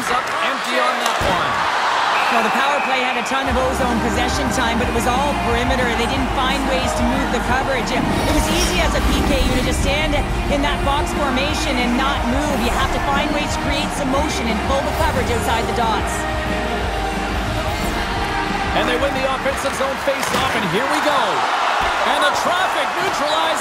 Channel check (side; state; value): both; identical; correlation 1.00